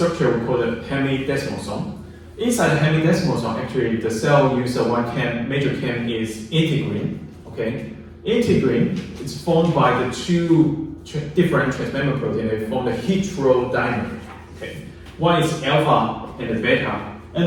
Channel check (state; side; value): identical; both; correlation 1.00